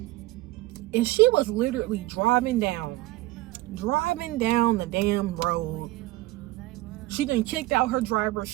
And she was literally driving down the damn road. She done kicked out her driver.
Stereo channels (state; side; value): quieter; left; 18.5 dB